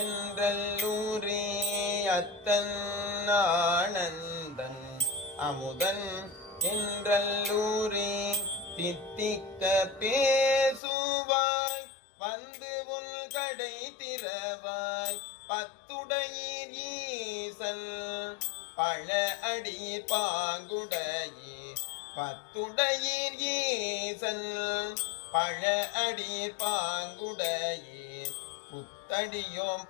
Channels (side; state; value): right; drops out; at 10.8 s